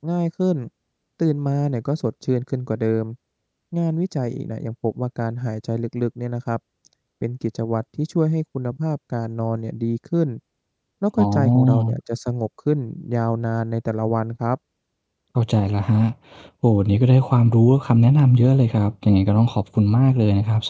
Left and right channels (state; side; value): identical; both; correlation 1.00